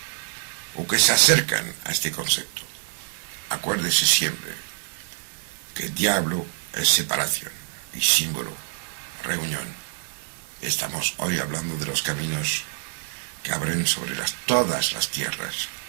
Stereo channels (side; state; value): left; silent; digital silence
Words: o que se acercan a este concepto, acuérdese siempre que diablo es separación y símbolo, reunión. Estamos hoy hablando de los caminos que abren sobre todas las tierras.